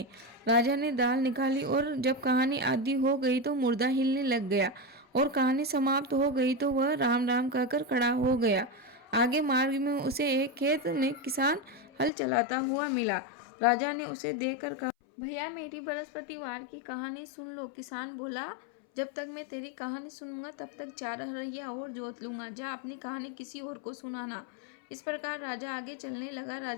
राजा ने दाल निकाली और जब कहानी आधी हो गई तो मुर्दा हिलने लग गया और कहानी समाप्त हो गई तो वह राम राम कहकर खड़ा हो गया। आगे मार्ग में उसे एक खेत में किसान हल चलाता हुआ मिला। राजा ने उसे देखकर कहा, भैया, मेरी बृहस्पतिवार की कहानी सुन लो। किसान बोला, जब तक मैं तेरी कहानी सुनूंगा तब तक 4 हरैया और जोत लूंगा। जा, अपनी कहानी किसी और को सुनाना। इस प्रकार राजा आगे चलने लगा।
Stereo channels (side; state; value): right; drops out; at 12.1 s